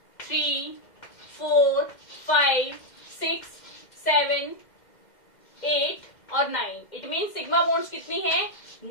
3 4 5 6 7 8 और 9। इट मीन सिग्मा बॉन्ड्स कितनी है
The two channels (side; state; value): right; late; 2.1 ms